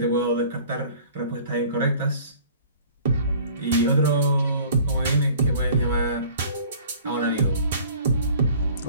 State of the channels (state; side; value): inverted; both; correlation -0.49